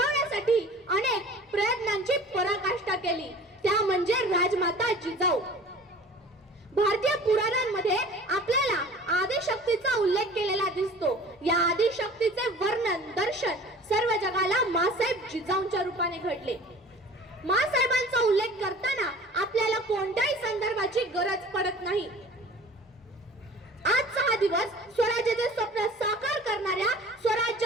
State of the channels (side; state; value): both; normal; correlation 0.44